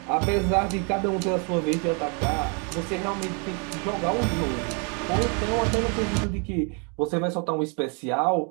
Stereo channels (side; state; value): left; quieter; 36.4 dB